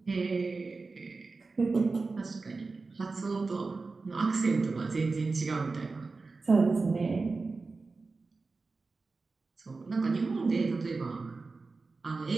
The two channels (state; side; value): quieter; left; 4.0 dB